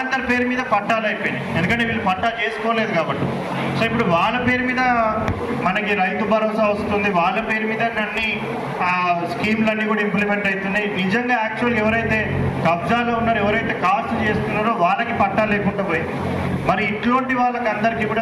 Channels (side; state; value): both; identical; correlation 1.00